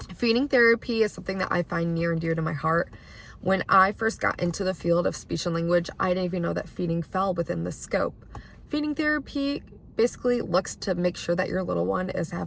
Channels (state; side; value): identical; both; correlation 1.00